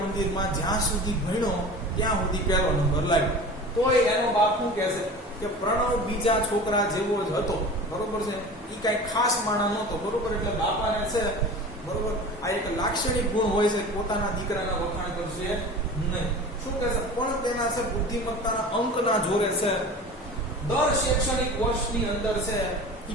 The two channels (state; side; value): normal; both; correlation 0.36